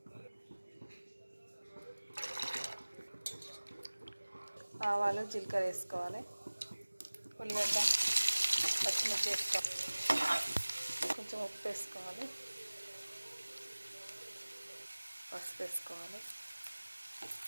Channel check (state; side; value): inverted; both; correlation -1.00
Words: ఆవాలు జీలకర్ర వేసుకోవాలి, ఉల్లిగడ్డ పచ్చిమిర్చి వేసుకోవాలి, కొంచెం ఉప్పు వేసుకోవాలి, పసుపు వేసుకోవాలి.